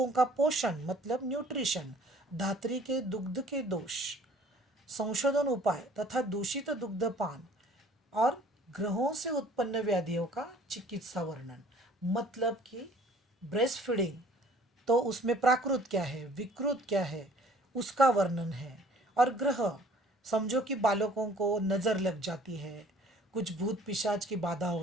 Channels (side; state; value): both; normal; correlation 0.54